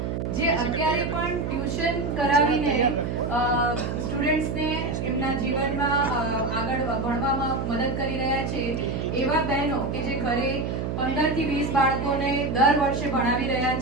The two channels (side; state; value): right; noise; hum, 2 dB below the sound